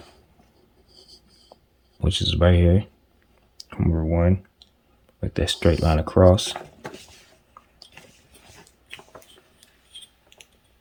which is right here, number 1. Like that straight line across.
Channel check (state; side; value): identical; both; correlation 1.00